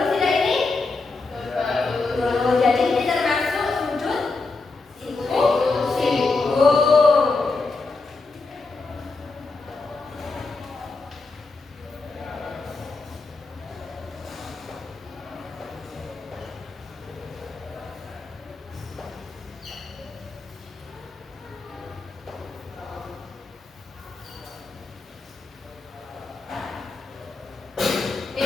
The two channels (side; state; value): right; quieter; 3.8 dB